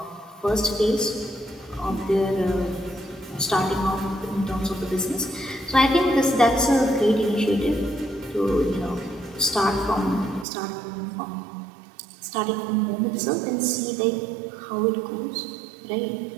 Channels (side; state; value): left; drops out; at 10.5 s